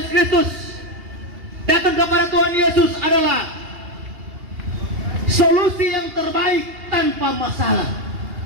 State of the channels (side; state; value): left; late; 2.8 ms